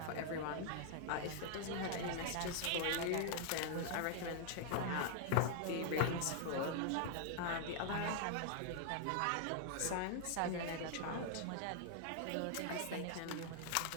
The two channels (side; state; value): both; different; correlation 0.00